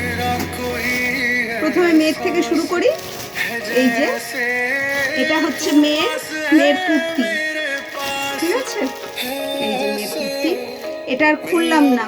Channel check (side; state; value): both; identical; correlation 1.00